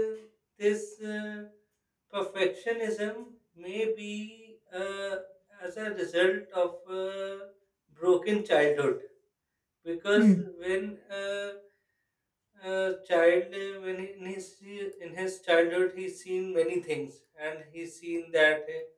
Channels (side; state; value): both; identical; correlation 1.00